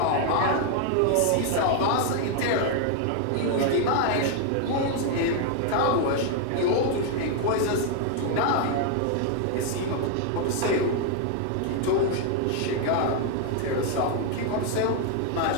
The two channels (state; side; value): different; both; correlation 0.00